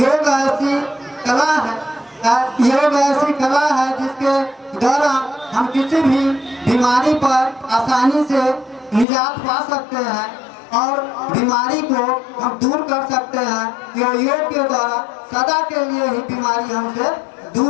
ऐसी कला है, योग ऐसी कला है जिसके द्वारा हम किसी भी बीमारी पर आसानी से निजात पा सकते हैं और बीमारी को हम दूर कर सकते हैं। योग के द्वारा सदा के लिए ही बीमारी हमसे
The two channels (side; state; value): right; drops out; at 9.1 s